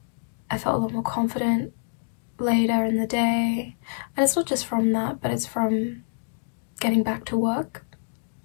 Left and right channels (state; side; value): silent; right; digital silence